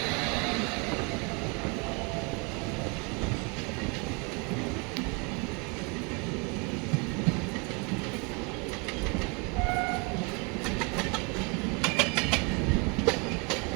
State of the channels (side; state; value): left; quieter; 31.8 dB